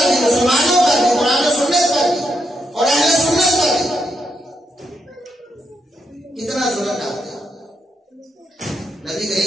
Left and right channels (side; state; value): both; normal; correlation 0.81